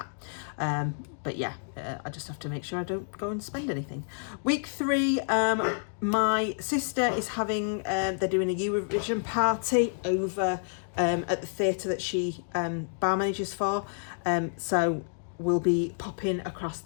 But yeah, I just have to make sure I don't go and spend anything. Week 3, my sister is having, they're doing a Eurovision party over at the theatre that she bar manages for. So we'll be popping across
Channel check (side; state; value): right; silent; digital silence